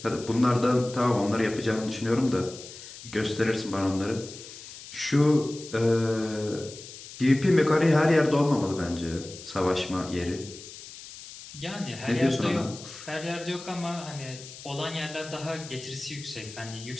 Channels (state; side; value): noise; left; hiss, 15 dB below the sound